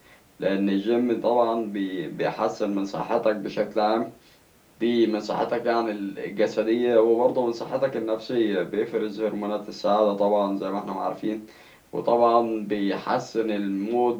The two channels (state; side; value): identical; both; correlation 1.00